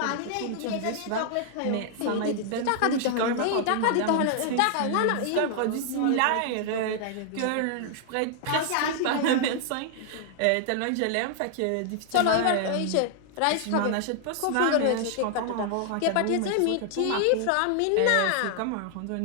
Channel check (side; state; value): both; different; correlation 0.00